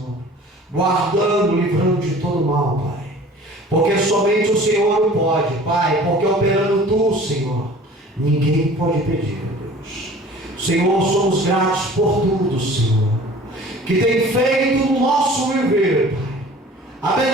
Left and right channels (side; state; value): both; normal; correlation 0.46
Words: Guardando, livrando de todo mal, Pai. porque somente o Senhor pode, Pai, porque operando Tu, Senhor, ninguém pode pedir, Deus. Senhor, somos gratos por tudo, Senhor, que tem feito no nosso viver, Pai.